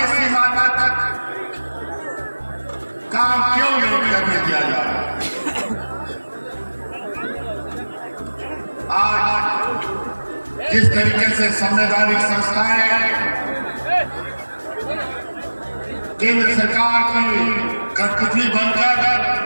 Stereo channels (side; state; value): both; inverted; correlation -1.00